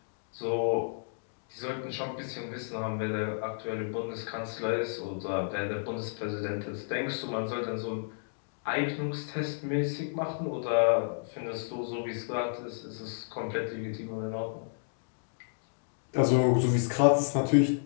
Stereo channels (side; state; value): right; silent; digital silence